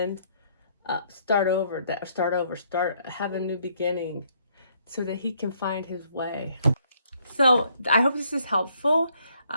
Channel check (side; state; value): both; inverted; correlation -0.68